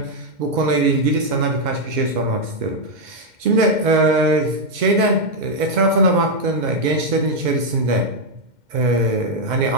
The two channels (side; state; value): left; late; 2.1 ms